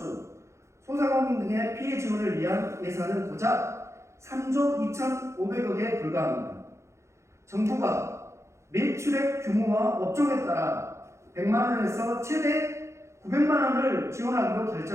소상공인 등의 피해 지원을 위한 예산은 고작 3조 2,500억에 불과합니다. 정부가 매출액 규모와 업종에 따라 100만 원에서 최대 900만 원을 지원하기로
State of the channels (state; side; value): late; left; 0.14 ms